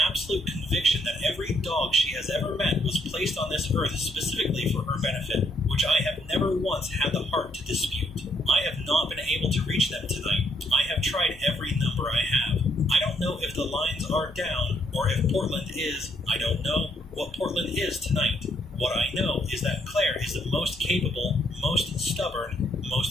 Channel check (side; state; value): both; normal; correlation 0.72